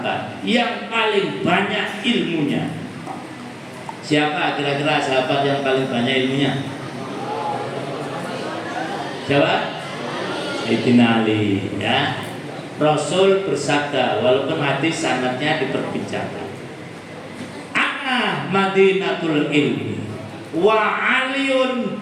yang paling banyak ilmunya. Siapa kira-kira sahabat yang paling banyak ilmunya? Siapa? Sayyidina Ali, ya. Rasul bersabda, walaupun hadis sanadnya diperbincangkan, ana madinatul ilmi wa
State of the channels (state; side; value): identical; both; correlation 1.00